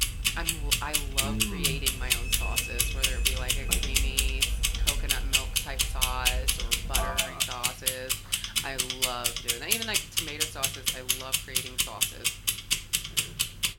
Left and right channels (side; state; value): both; identical; correlation 1.00